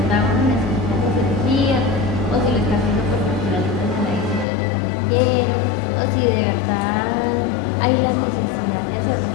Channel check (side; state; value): right; drops out; at 4.5 s